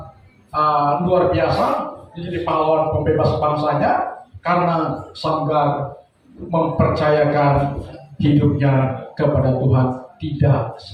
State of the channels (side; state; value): both; identical; correlation 1.00